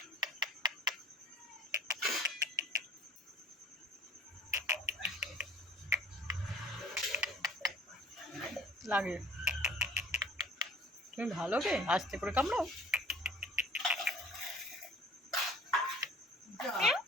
লাগে, তুমি ভালো কে? আস্তে করে কামড়াও।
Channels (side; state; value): both; normal; correlation 0.49